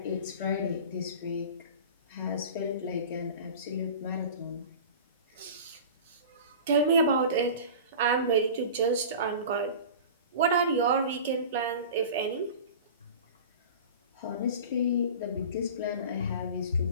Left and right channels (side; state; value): both; inverted; correlation -0.36